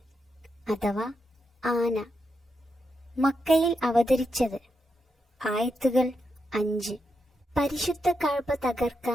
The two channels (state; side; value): normal; both; correlation 0.84